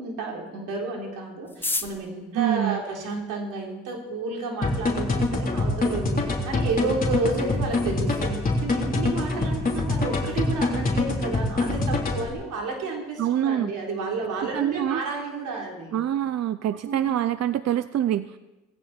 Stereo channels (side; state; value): both; normal; correlation 0.47